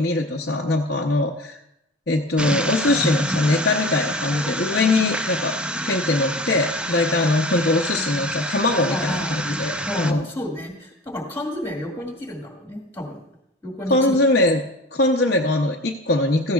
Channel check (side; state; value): both; normal; correlation 0.37